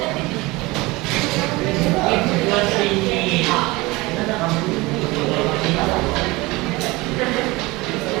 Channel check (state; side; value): quieter; left; 22.3 dB